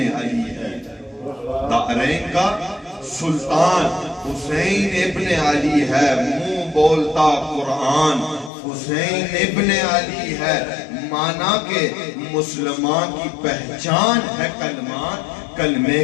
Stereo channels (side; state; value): right; drops out; at 8.5 s